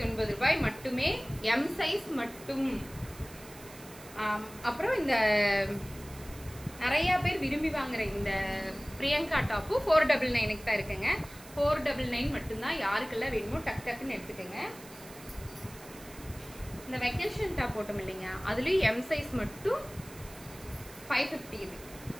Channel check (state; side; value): noise; right; hiss, 18 dB below the sound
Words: ரூபாய் மட்டுமே. எம் சைஸ் மட்டும். அப்புறம் இந்த நிறைய பேர் விரும்பி வாங்குற இந்த பிரியங்கா டாப்பு 499 தான் இருக்குங்க. 499 மட்டும்தான். யாருக்கெல்லாம் வேணுமோ டக் டக்குன்னு எடுத்துக்கோங்க. இந்த வெக்கேஷன் டாப் போட்டோம் இல்லைங்க, அதுலேயும் எம் சைஸ் மட்டும் 550.